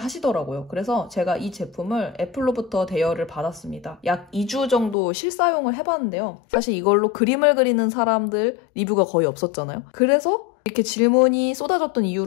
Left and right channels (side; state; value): right; drops out; at 5.0 s